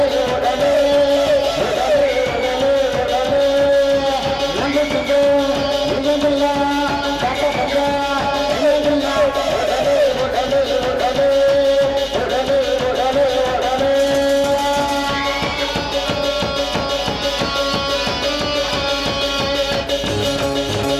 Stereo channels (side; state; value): both; identical; correlation 1.00